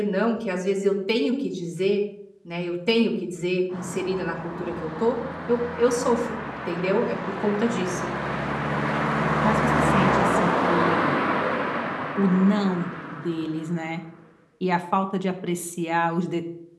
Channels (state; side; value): identical; both; correlation 1.00